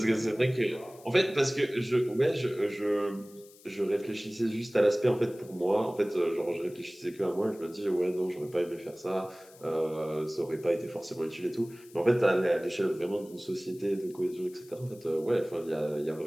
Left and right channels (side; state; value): left; noise; hiss, 24 dB below the sound